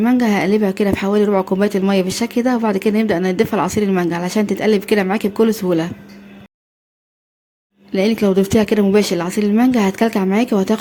هقلبها كده بحوالي ربع كوباية المية بالشكل ده، وبعد كده نبدأ نضيفها لعصير المانجا علشان تتقلب كده معاكي بكل سهولة. لانك لو ضفتيها كده مباشر لعصير المانجا هتكلكع معاكي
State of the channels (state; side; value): identical; both; correlation 1.00